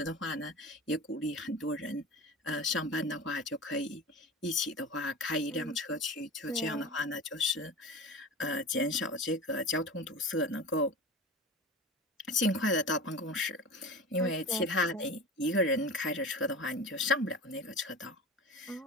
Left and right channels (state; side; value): normal; both; correlation 0.32